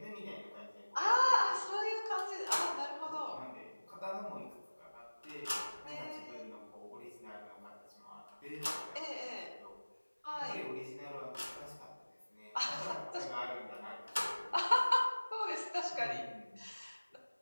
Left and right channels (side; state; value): both; inverted; correlation -1.00